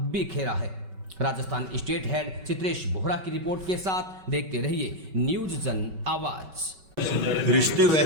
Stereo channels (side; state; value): left; late; 5.3 ms